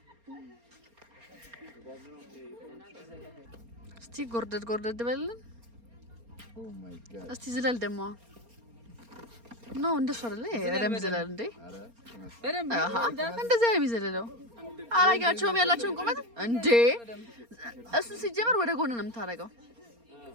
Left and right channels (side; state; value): left; late; 4.3 ms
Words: እስቲ ጎርደድ በልልን። እስቲ ዝለል ደግሞ ኖ እንደሱ አይደለ? በደምብ ዝለል እንዴ! በደምብ እንደዚህ የሚዘለለው አላጋቸውም ያላቸውን ቁመት እንዴ! እሱ ሲጀመር ወደ ጎን ነው የምታደርገው።